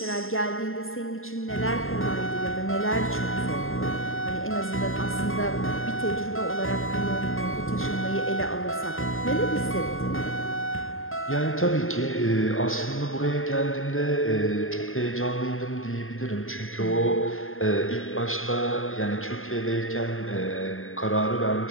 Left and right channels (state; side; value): late; right; 0.60 ms